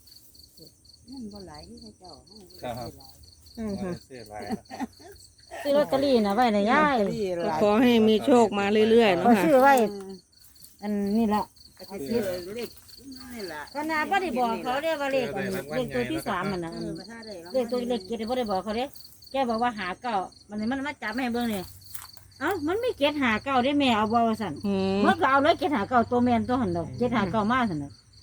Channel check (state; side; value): identical; both; correlation 1.00